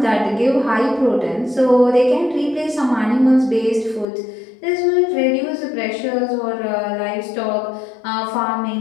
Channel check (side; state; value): right; drops out; at 4.0 s